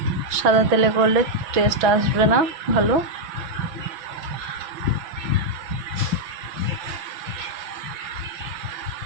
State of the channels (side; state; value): left; late; 6.1 ms